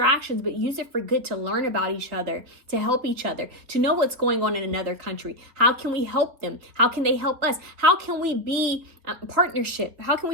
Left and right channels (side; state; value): left; late; 3.9 ms